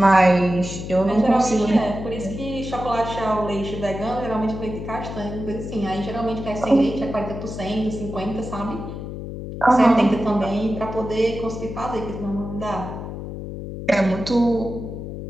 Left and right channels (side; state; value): left; noise; hum, 8 dB below the sound